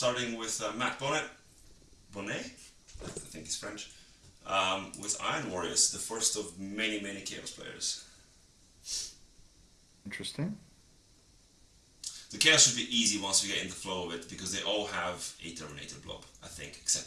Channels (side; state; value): both; identical; correlation 1.00